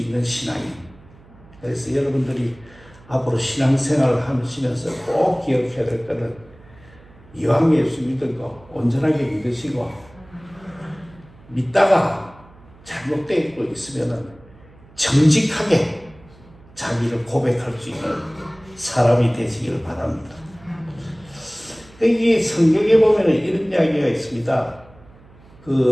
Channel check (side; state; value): right; noise; hum, 24 dB below the sound